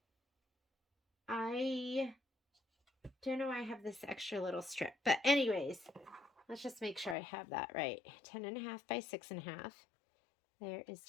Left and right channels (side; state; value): right; drops out; at 7.2 s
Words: I don't know why I have this extra little strip. But anyways, let's just make sure I have that right. 10.5 by 6.5. There is